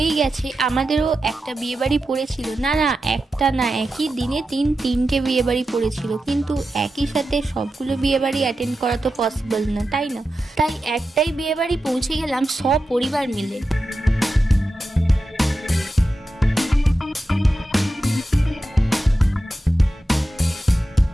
গেছে। আমাদেরও একটা বিয়েবাড়ি পড়েছিল, না একটা না, একই দিনে তিনটে বিয়েবাড়ি পড়েছিল, কিন্তু একই সাথে সবগুলো বিয়েবাড়ি অ্যাটেন্ড করা তো পসিবল না, তাই না? তাই একটাই বিয়েবাড়ি পৌঁছে গেলাম সপরিবার মিলে।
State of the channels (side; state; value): both; normal; correlation 0.91